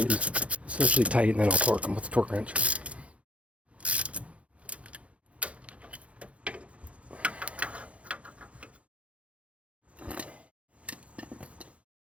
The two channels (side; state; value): left; late; 0.063 ms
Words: essentially tight, and then I'll torque them with the torque wrench.